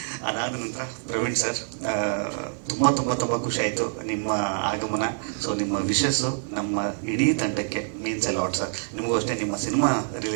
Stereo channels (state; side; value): silent; left; digital silence